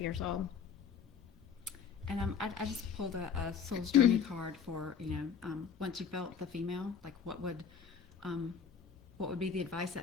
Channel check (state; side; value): quieter; right; 6.7 dB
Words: old. And I just pulled a soul's journey card for, once you felt the female, like what would be the advice